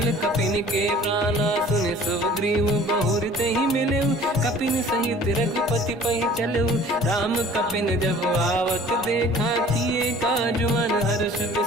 कपिन के प्राणा। सुन सुग्रीव बहुर तहि मिलऊ, कपिन सहित रघुपति पहि चलऊ। राम कपिन जब आवत देखा, किए काज मन हर्ष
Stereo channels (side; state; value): both; normal; correlation 0.49